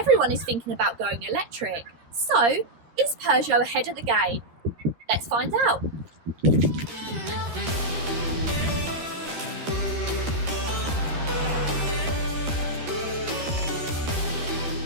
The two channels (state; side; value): late; left; 13 ms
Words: is thinking about going electric. So, is Peugeot ahead of the game? Let's find out.